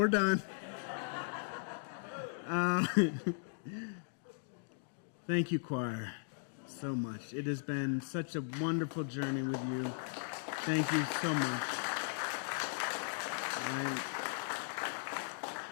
done. Thank you, choir, so much. It has been such a wonderful journey with you. Thank you so much.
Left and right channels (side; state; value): right; silent; digital silence